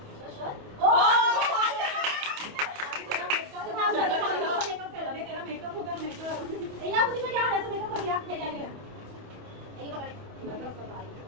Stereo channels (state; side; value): late; left; 28 ms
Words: मेकअप होगा मेकअप. या मुझे क्या है तो मेकअप कर दिया हे काय केलं हे पकड